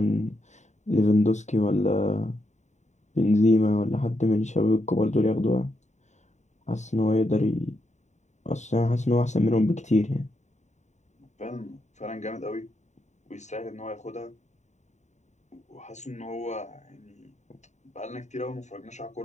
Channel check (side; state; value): right; late; 0.34 ms